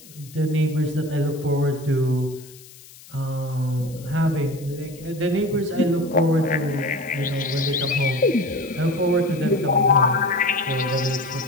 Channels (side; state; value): left; noise; hiss, 21 dB below the sound